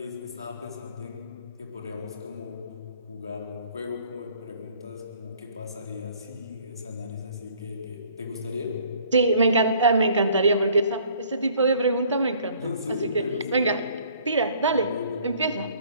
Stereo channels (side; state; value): both; inverted; correlation -0.56